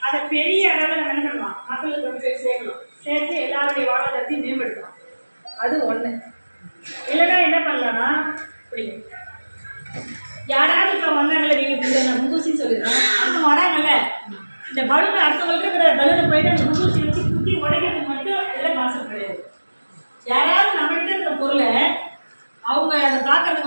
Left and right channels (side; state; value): both; inverted; correlation -1.00